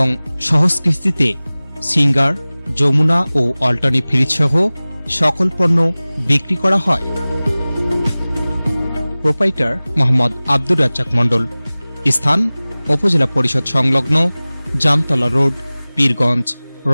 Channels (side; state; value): both; inverted; correlation -0.99